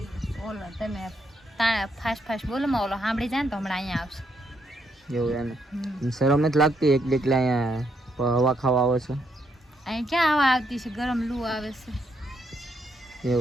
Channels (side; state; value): both; normal; correlation 0.76